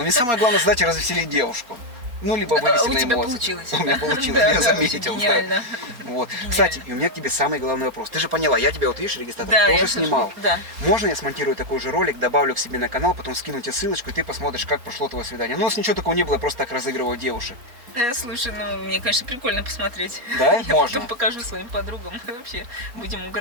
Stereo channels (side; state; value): left; late; 4.2 ms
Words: Мне самое главное, знаете, развеселить девушку. Ну, либо вывести У на тебя эмоции. получилось. У меня получилось, Да, я да, заметил. вообще да. гениально. Вот. Гениально. Кстати, и у меня к тебе самый главный вопрос. Ты же поняла, я тебя вот видишь, регистратор, Да, я тоже слышу. снимал. Да. Можно я смонтирую такой же ролик, добавлю к себе на канал, потом скину тебе ссылочку, и ты посмотришь, как прошло твое свидание. Ну, у нас ничего такого не было, я просто так разыгрываю девушек. Слушай, мне, конечно, прикольно посмотреть. Да? Я Можно. потом покажу своим подругам. Вообще, будем